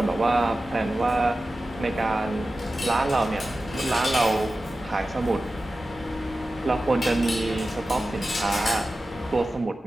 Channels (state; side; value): normal; both; correlation 0.94